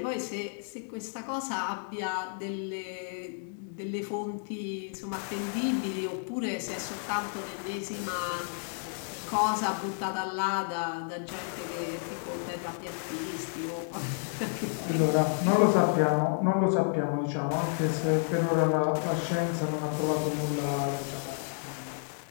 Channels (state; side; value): silent; right; 57 dB below the other